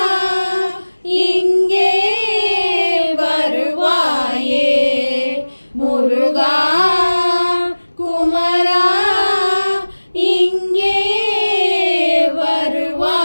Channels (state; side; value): inverted; both; correlation -1.00